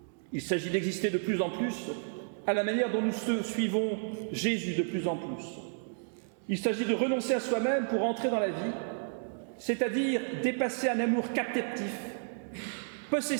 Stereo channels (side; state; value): left; silent; digital silence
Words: Il s'agit d'exister de plus en plus à la manière dont nous suivons Jésus de plus en plus. Il s'agit de renoncer à soi-même pour entrer dans la vie, c'est-à-dire dépasser un amour captif,